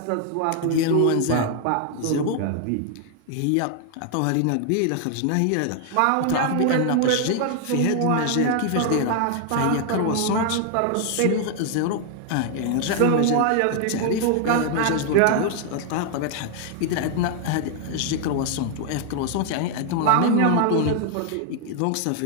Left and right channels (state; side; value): different; both; correlation 0.00